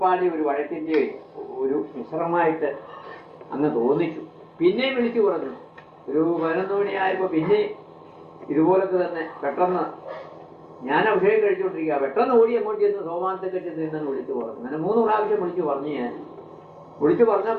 ഒരു വഴക്കിന്റെ ഒരു മിശ്രമായിട്ട് അങ്ങ് തോന്നിച്ചു. പിന്നെയും വിളിച്ചു പറഞ്ഞു. ഒരു 11 മണിയായപ്പോ പിന്നെ ഇതുപോലൊക്കെ തന്നെ പെട്ടെന്ന് ഞാൻ അഭിഷേകം കഴിച്ചുകൊണ്ടിരിക്കുക, പെട്ടെന്ന് ഓടി അങ്ങോട്ട് ചെന്ന് സോമാനത്തെ കെട്ടി നിന്നെന്ന് വിളിച്ചു പറഞ്ഞു. അങ്ങനെ 3 പ്രാവശ്യം വിളിച്ചു പറഞ്ഞു. ഞാൻ വിളിച്ചു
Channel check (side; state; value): both; identical; correlation 1.00